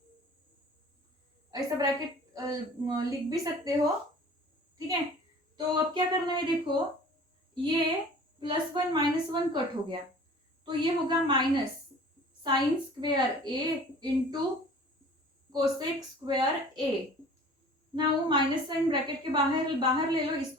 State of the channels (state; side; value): normal; both; correlation 0.46